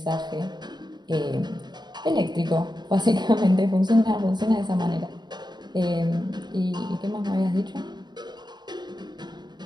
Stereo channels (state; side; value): late; left; 0.21 ms